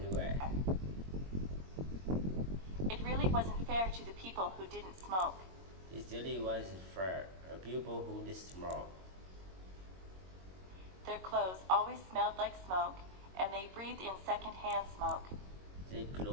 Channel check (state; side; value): late; left; 22 ms